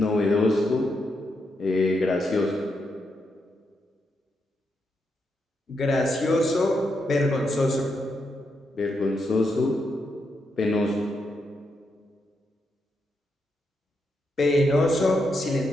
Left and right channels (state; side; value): normal; both; correlation 0.82